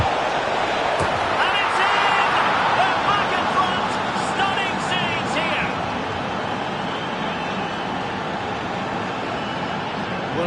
And it's in! They're back in front. Stunning scenes here.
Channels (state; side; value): identical; both; correlation 1.00